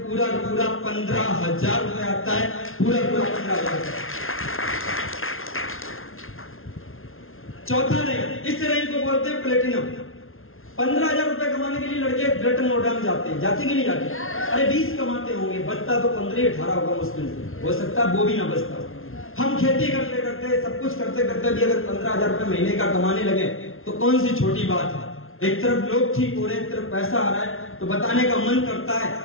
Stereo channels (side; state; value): right; late; 0.61 ms